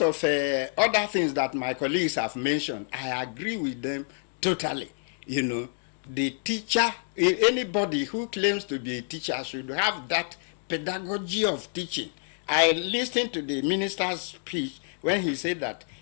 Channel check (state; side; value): silent; right; 59 dB below the other